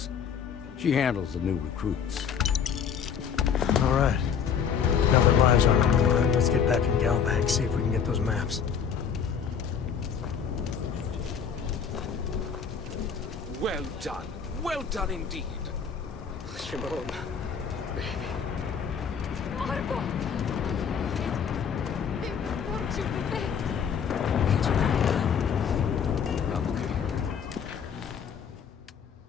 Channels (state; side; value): quieter; right; 7.2 dB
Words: She handles the new recruits. All right. Now the lives are on the line. Let's get back in Galbank, see if we can get those maps. Well done. Well done indeed. Shimon, baby. Marco! Won't you perfect? It's okay. I'm okay.